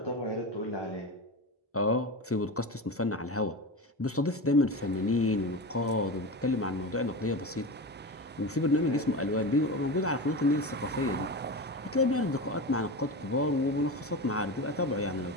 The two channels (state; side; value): normal; both; correlation 0.24